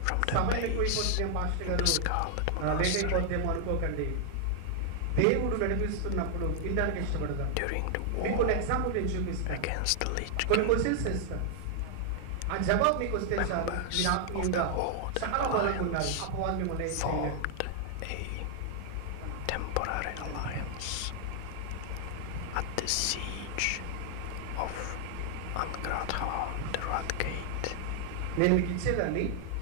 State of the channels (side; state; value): both; different; correlation 0.00